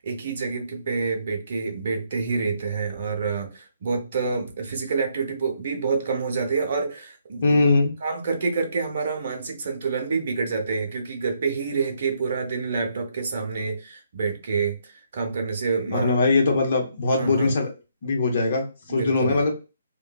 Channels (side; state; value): both; inverted; correlation -0.73